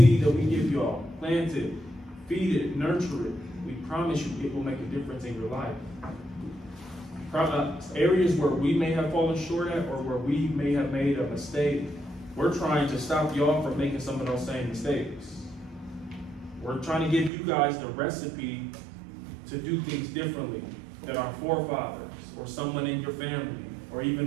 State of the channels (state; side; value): drops out; left; at 17.3 s